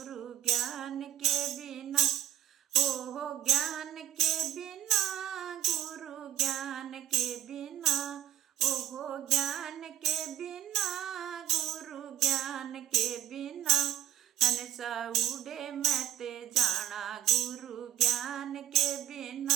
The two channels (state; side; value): quieter; left; 11.3 dB